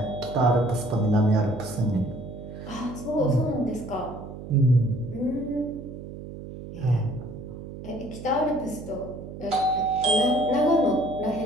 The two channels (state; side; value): noise; right; hum, 11 dB below the sound